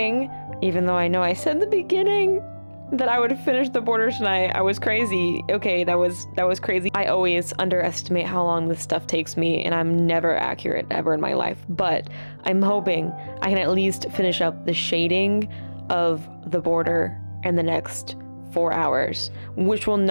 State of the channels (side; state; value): both; inverted; correlation -1.00